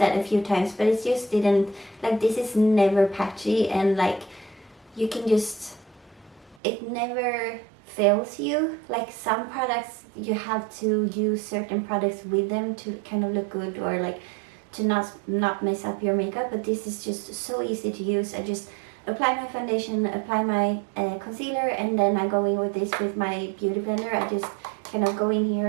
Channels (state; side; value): drops out; left; at 6.6 s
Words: a few times, but it just didn't, like, this is never patchy, and like you can just, it never fails you. Like some products you have to use certain products with them to kind of look good, or like to not mess up your makeup, but this is just so easy to use. I just apply my foundation, apply my concealer, and then I go in with this with my beauty blender. I just kind of go in